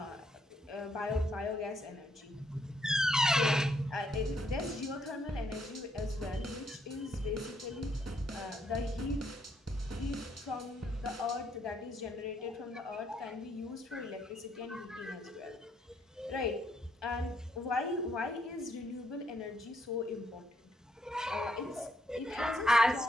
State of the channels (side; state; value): both; normal; correlation 0.73